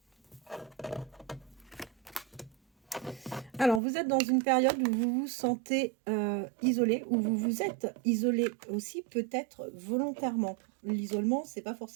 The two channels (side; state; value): left; drops out; at 3.8 s